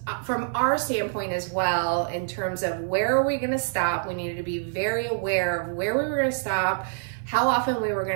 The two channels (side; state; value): left; silent; 57 dB below the other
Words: from our standpoint as well in terms of where are we going to stop. We needed to be very aware of where we were going to stop, how often we were